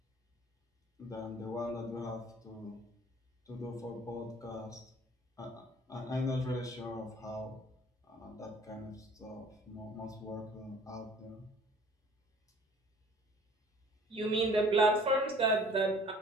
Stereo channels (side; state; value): both; normal; correlation 0.52